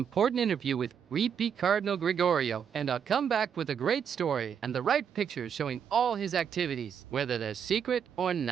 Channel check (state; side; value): quieter; left; 7.7 dB